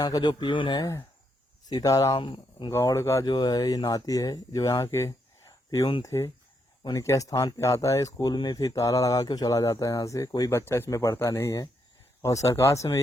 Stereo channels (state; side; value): normal; both; correlation 0.78